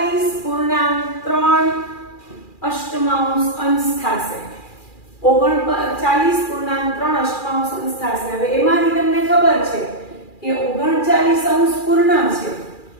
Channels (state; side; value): late; right; 2.4 ms